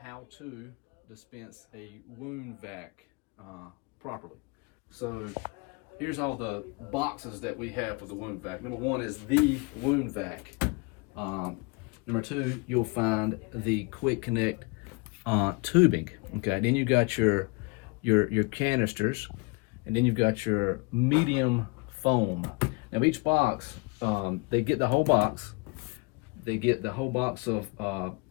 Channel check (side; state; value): right; quieter; 28.8 dB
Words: how to dispense a wound vac properly. So here's all the boxes that we have for the wound vac. Number one is the wound vac. Number two, you'll find the quick connect tubing. Okay, then you got your canisters, and then you've got your medium foam. Now each box, they get the whole box. They get the whole box of